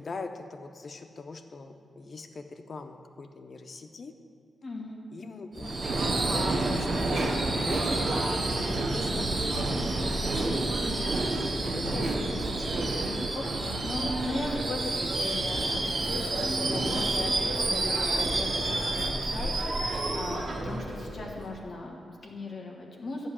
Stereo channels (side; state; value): both; normal; correlation 0.87